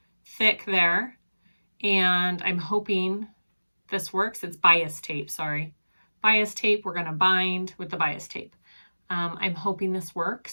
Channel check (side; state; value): both; inverted; correlation -1.00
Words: thick there. And I'm hoping this works. It's bias tape, sorry. Bias tape, we're gonna bind with the bias tape. I'm hoping this